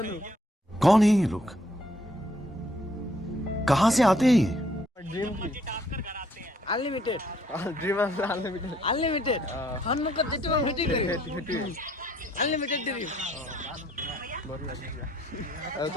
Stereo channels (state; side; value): normal; both; correlation 0.66